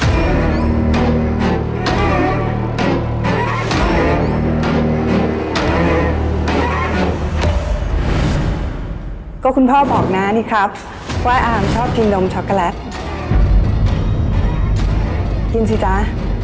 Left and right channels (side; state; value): both; identical; correlation 1.00